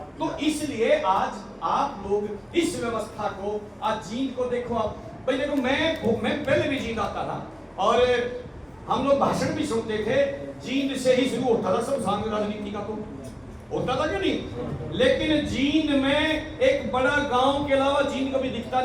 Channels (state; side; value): identical; both; correlation 1.00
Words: तो इसलिए आज आप लोग इस व्यवस्था को आज जींद को देखो। आप भाई देखो, मैं पहले भी जींद आता था और हम लोग भाषण भी सुनते थे, जींद से ही शुरू होता था सब सांग राजनीति का, तो होता था कि नहीं? लेकिन जींद में एक बड़ा गांव के अलावा जींद कभी दिखता